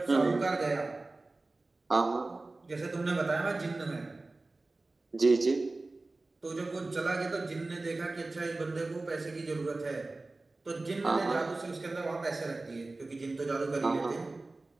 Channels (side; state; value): left; quieter; 3.2 dB